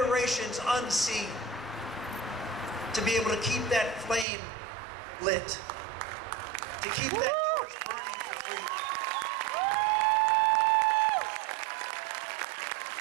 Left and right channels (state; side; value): drops out; left; at 4.2 s